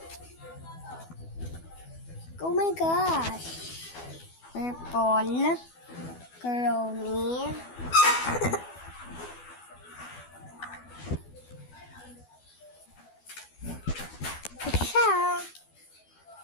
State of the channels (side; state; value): right; late; 12 ms